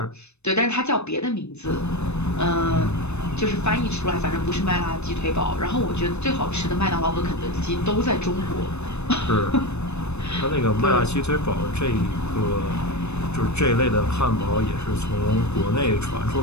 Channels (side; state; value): right; late; 0.81 ms